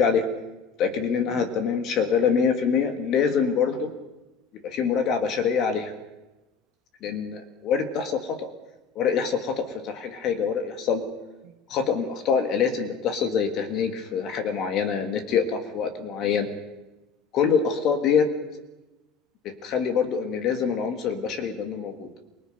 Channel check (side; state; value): right; quieter; 6.0 dB